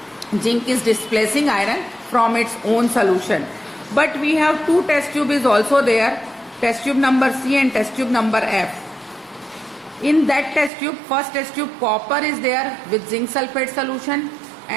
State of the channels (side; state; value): left; drops out; at 10.7 s